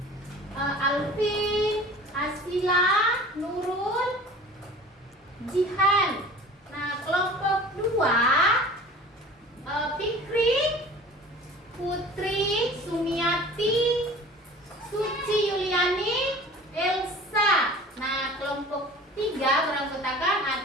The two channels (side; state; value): both; normal; correlation 0.43